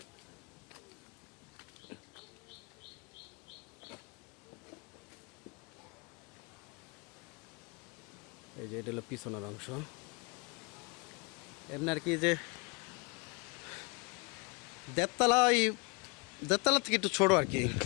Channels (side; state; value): right; quieter; 29.3 dB